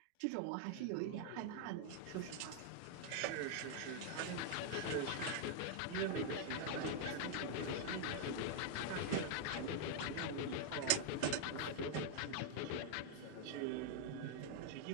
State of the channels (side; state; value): both; different; correlation 0.00